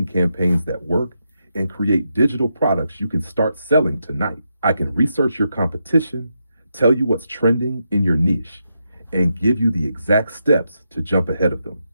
campaigns that work, and create digital products you can start selling tonight. I can research your competition, tell you what's trending in your niche, and give you the exact steps to jump ahead of them.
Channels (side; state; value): both; inverted; correlation -0.84